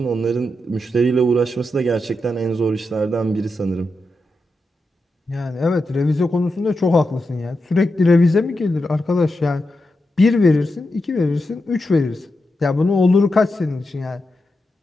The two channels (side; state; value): both; normal; correlation 0.87